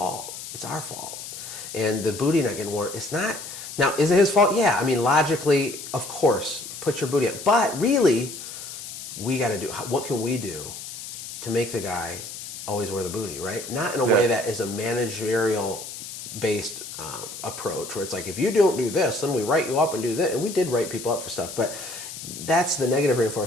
It's our fault. And the booty not getting worn, it's not. Now, is it his fault? Yeah. Logically, of course, put your booty up. But really, we got to do, what can we do to make the guy always wear the booty, right? Not in a way that is a managerial-based approach where it's like, if you don't do this, then we write you up and do this. And we did write people up for stuff, but that's the negative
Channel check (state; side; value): noise; left; hiss, 10 dB below the sound